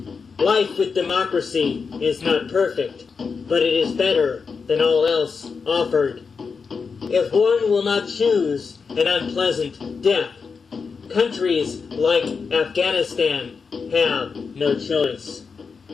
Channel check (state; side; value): quieter; right; 5.3 dB